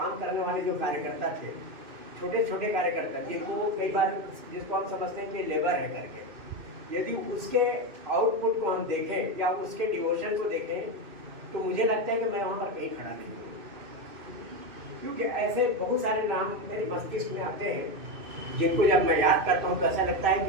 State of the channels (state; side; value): late; left; 2.6 ms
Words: करने वाले जो कार्यकर्ता थे, छोटे छोटे कार्यकर्ता जिनको कई बार जिसको हम समझते हैं कि लेबर है करके, यदि उसके आउटपुट को हम देखें या उसके डिवोशन को देखें तो मुझे लगता है कि मैं वहाँ पर कहीं खड़ा नहीं हूँ। क्योंकि ऐसे बहुत सारे नाम मेरे मस्तिष्क में आते हैं जिनको जब मैं याद करता हूँ तो ऐसा लगता है